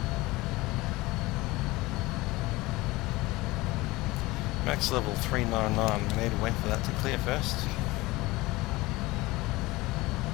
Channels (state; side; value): quieter; right; 20.7 dB